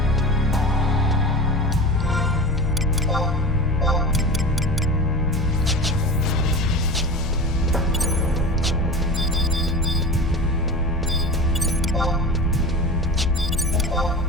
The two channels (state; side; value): normal; both; correlation 0.32